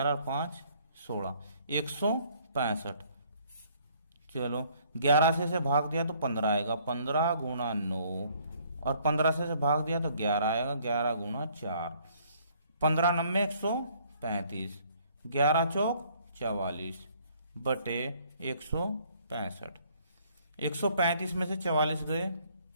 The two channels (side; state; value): both; inverted; correlation -0.63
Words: और 5 16, 165। चलो 11 से भाग दिया तो 15 आएगा, 15 गुणा 9 और 15 से भाग दिया तो 11 आएगा, 11 गुणा 4, 15 9 135, 11 चौक 44 बटे 165। 135 में से 44 गए,